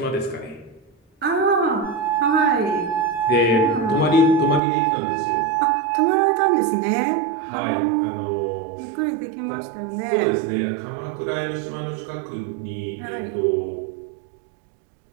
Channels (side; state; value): left; drops out; at 4.6 s